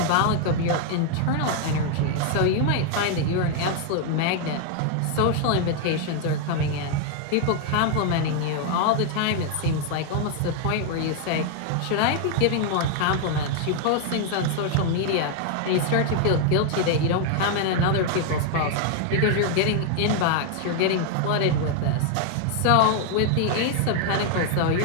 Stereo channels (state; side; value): different; both; correlation 0.00